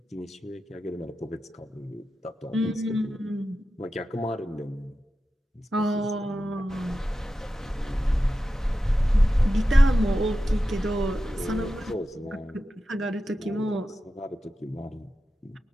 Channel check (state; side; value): normal; both; correlation 0.92